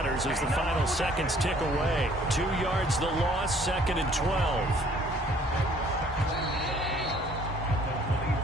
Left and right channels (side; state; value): both; normal; correlation 0.58